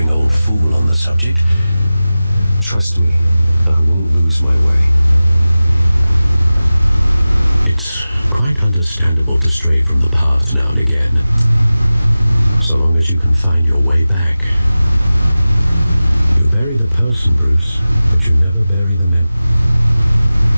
old fool on the subject. Trust me, I won't lose my way. It's quite understandable to stray from the path now and again. So long as you can find your way back. You bury the person, Bruce, but you never bury the men.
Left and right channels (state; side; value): inverted; both; correlation -0.96